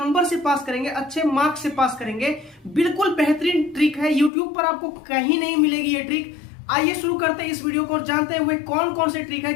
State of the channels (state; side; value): drops out; right; at 4.3 s